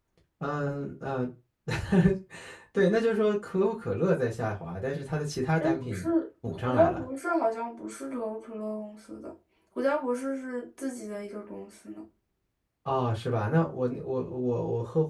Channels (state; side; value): identical; both; correlation 1.00